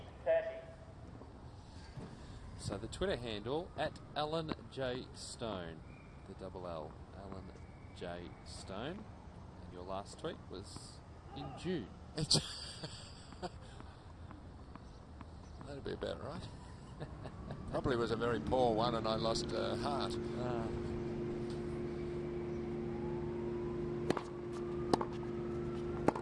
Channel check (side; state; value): both; identical; correlation 1.00